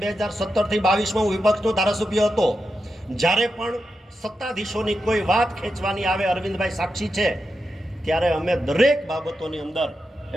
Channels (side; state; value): both; normal; correlation 0.88